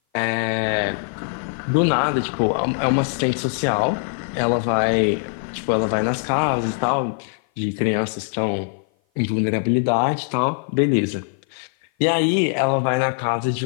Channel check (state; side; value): silent; right; 56 dB below the other